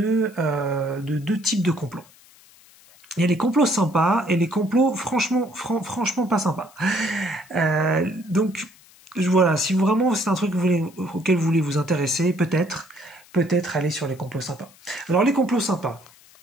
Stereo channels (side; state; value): left; noise; hiss, 26 dB below the sound